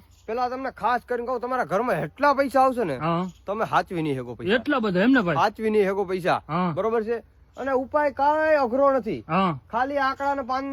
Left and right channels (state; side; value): identical; both; correlation 1.00